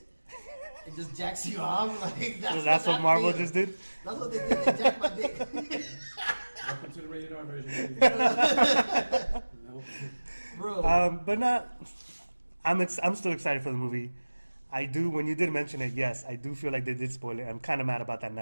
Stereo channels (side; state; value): both; inverted; correlation -1.00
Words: and just jacks you off. Like So that's what that Marvel feels. just did? That's what they did. They jacked my dick. Welcome to the rated R version. No. Bro, But not. I'm still excited for the movie. I do. When you did mention it, yes, I do feel like they did spoil it. I'm kind of mad about that